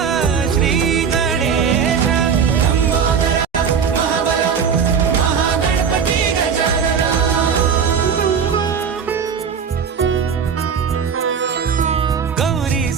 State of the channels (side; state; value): left; quieter; 6.8 dB